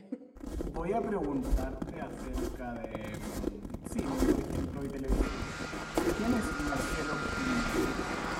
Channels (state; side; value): identical; both; correlation 1.00